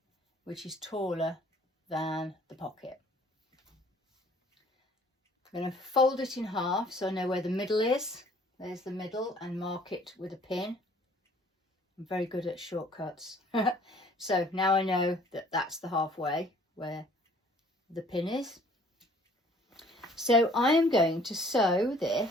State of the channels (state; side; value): normal; both; correlation 0.56